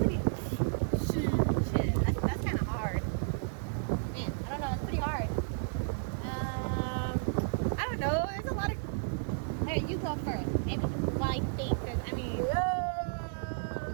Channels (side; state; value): left; silent; digital silence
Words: Shit, that's kind of hard. Man, I don't know. It's pretty hard. I don't know. There's a lot of. Hey, you go first. Maybe while I think, because I mean.